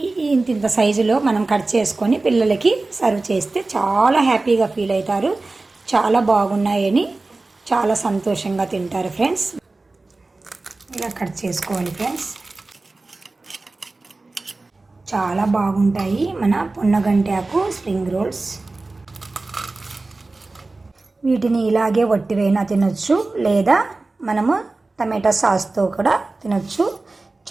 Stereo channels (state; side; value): quieter; left; 3.3 dB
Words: ఇంత సైజులో మనం కట్ చేసుకొని పిల్లలకి సర్వ్ చేస్తే చాలా హ్యాపీగా ఫీల్ అవుతారు. చాలా బాగున్నాయని చాలా సంతోషంగా తింటారు ఫ్రెండ్స్. ఇలా కట్ చేసుకోవాలి ఫ్రెండ్స్. చాలా బాగుంటాయి మన పొన్నగంటి ఆకు స్ప్రింగ్ రోల్స్. వీటిని ఇలాగే వట్టివైనా తినొచ్చు, లేదా మనము టమాటా సాస్తో కూడా తినొచ్చు.